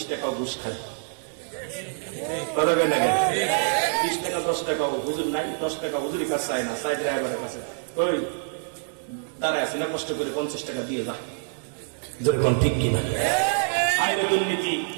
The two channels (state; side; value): silent; left; digital silence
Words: টাকাও ঘুষ খায়। 20 টাকা 10 টাকাও হুজুর নাই, 10 টাকা হুজুরের কাছে চায় না, চাই ড্রাইভারের কাছে। ওই দাঁড়ায় আছে না, কষ্ট করে 50 টাকা দিয়ে যা, যেরকম ঠিক কিনা। আইনে দুর্নীতি,